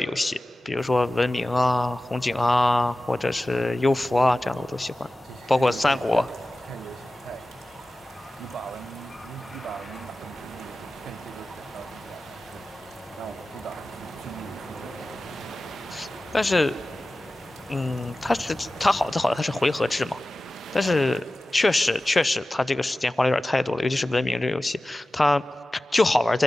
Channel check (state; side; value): normal; both; correlation 0.96